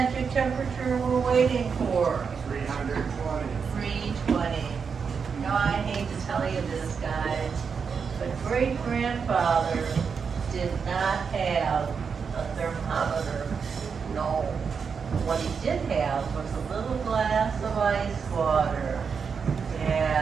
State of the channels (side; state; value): left; quieter; 6.0 dB